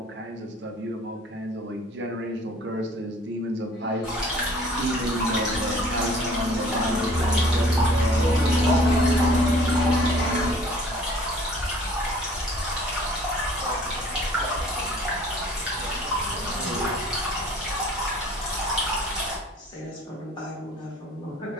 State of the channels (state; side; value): normal; both; correlation 0.52